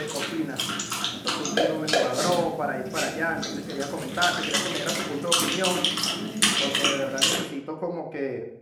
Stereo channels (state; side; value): identical; both; correlation 1.00